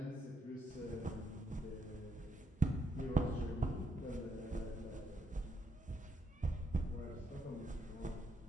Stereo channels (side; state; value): both; normal; correlation 0.77